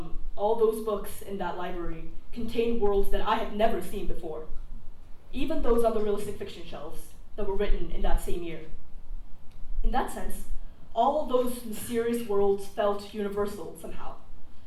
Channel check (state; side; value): identical; both; correlation 1.00